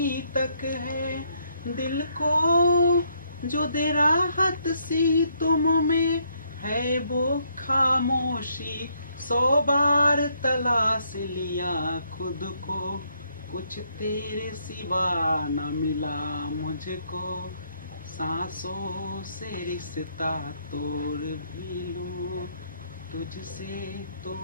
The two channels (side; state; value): both; inverted; correlation -0.72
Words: तक है, दिल को जो दे राहत सी तुम में है वो खामोशी। 100 बार तलाश लिया खुद को, कुछ तेरे सिवा न मिला मुझको। सांसों से रिश्ता तोड़ भी लूं, तुझसे